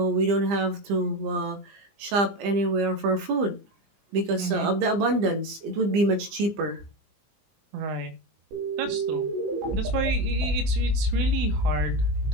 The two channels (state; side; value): late; left; 20 ms